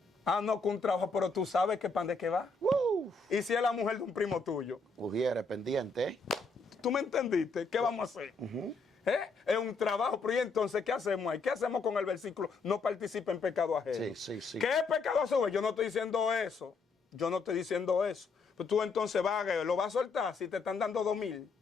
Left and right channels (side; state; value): right; quieter; 4.1 dB